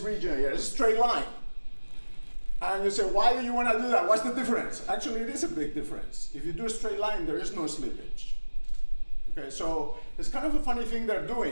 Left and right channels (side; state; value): both; inverted; correlation -1.00